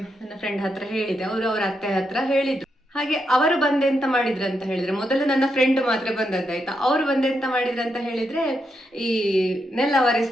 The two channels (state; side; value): normal; both; correlation 0.82